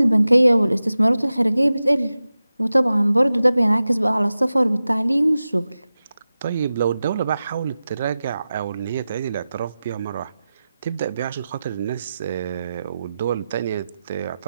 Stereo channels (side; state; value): both; inverted; correlation -0.94